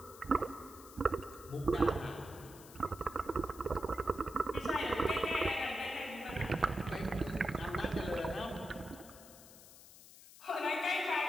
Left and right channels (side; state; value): left; noise; hiss, 19 dB below the sound